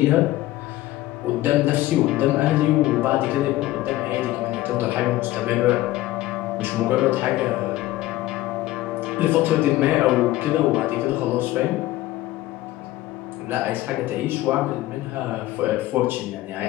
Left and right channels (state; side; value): quieter; right; 16.2 dB